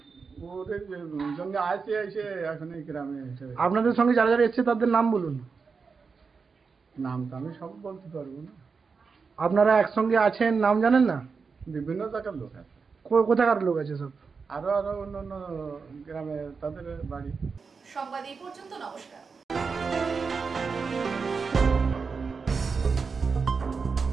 ওদের জন্য আসে এসে এখন এই গ্রামে এসে। আপনাদের সঙ্গে যারা যারা এসছে তাদের নাম বলুন। নাম তো আমি সব বলতে পারবো না। আপনারা একসঙ্গে আছেন, নাম জানেন না? বিভিন্ন জায়গার লোক আছে। কোথাকার লোক আছে সব? আরো অন্য অন্য গ্রামে তাদের বাড়ি। সংবাদ এই পর্যন্ত। নমস্কার।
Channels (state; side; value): quieter; left; 5.1 dB